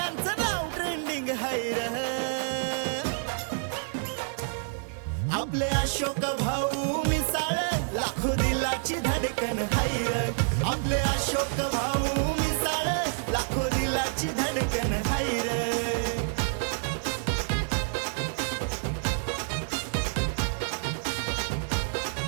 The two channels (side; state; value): left; silent; 59 dB below the other